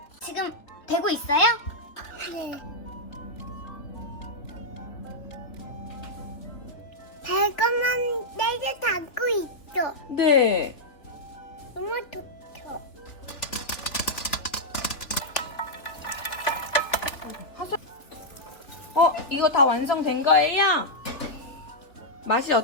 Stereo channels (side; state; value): right; late; 3.4 ms